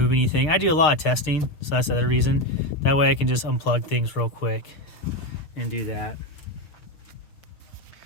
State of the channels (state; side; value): late; right; 6.5 ms